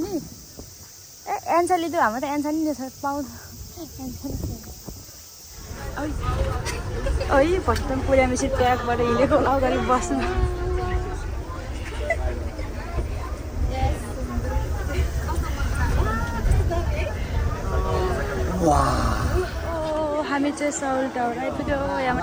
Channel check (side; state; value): both; identical; correlation 1.00